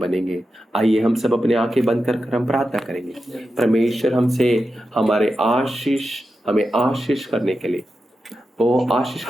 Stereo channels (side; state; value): both; normal; correlation 0.90